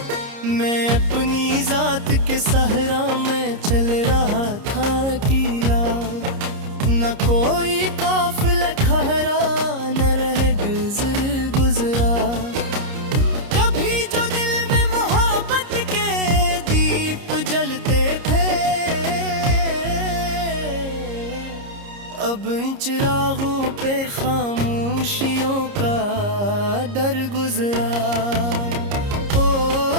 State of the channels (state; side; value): late; left; 30 ms